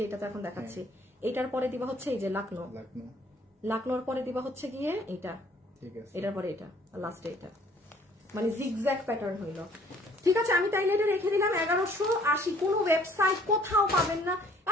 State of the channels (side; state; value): both; normal; correlation 0.58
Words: এটা তো এখন দেখাচ্ছি, এটার পরে দিবা হচ্ছে এই যে লাকনোর পরে দিবা হচ্ছে গিয়ে এইটা, এটার পরে এটা, আর লাস্টে এটা, মানে জিগজ্যাগ প্যাটার্ন হইলো। ঠিক আছে আমি তাইলে এটা রেখে দিলাম 1180। কোনো ওয়েবসাইট কোথাও পাবেন না,